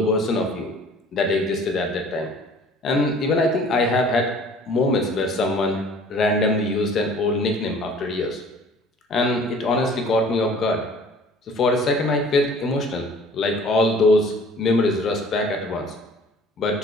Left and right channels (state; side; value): normal; both; correlation 0.50